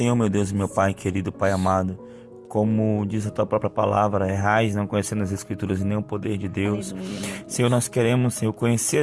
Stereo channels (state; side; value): identical; both; correlation 1.00